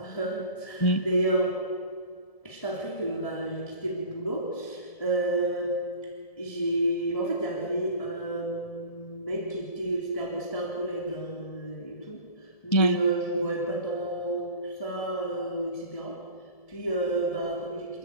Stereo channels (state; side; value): late; right; 1.7 ms